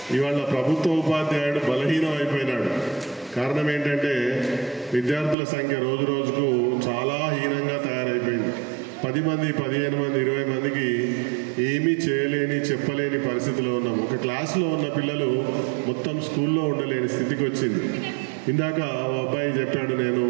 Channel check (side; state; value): left; drops out; at 5.4 s